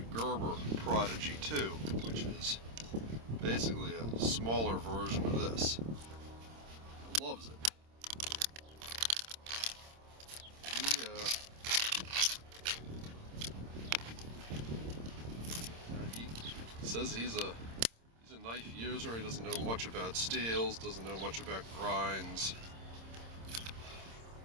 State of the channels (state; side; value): late; left; 26 ms